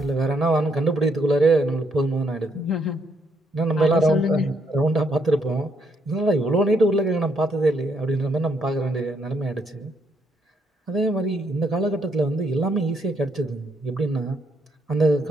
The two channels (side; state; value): both; normal; correlation 0.73